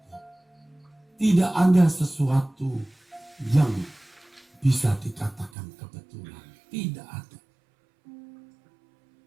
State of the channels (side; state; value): left; drops out; at 5.5 s